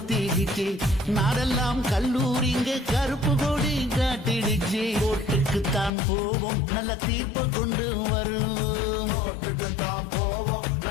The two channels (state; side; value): drops out; right; at 5.9 s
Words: நாடெல்லாம் கல்லூரிங்க கருப்பு கொடி காட்டிடுச்சு கோர்ட்டுக்குத்தான் போவோம் நல்ல தீர்ப்பை கொண்டு வருவோம்